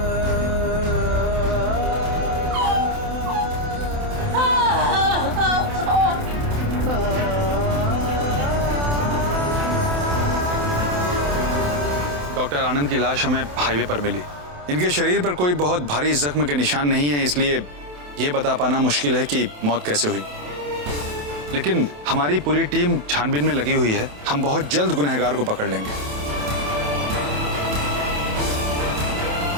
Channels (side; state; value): left; late; 27 ms